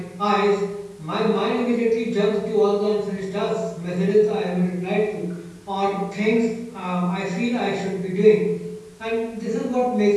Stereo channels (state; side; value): identical; both; correlation 1.00